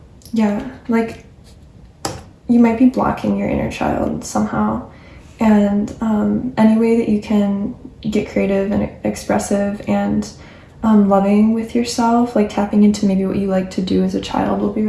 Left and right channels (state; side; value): identical; both; correlation 1.00